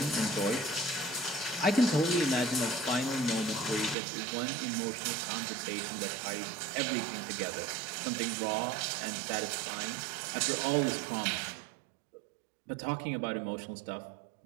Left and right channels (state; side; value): drops out; left; at 4.0 s